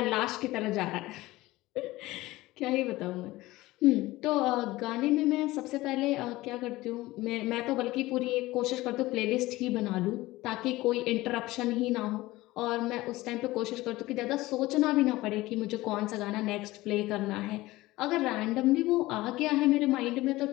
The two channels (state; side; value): quieter; right; 18.6 dB